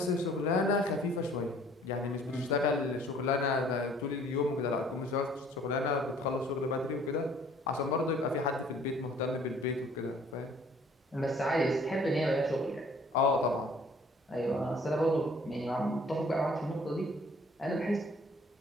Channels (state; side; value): normal; both; correlation 0.56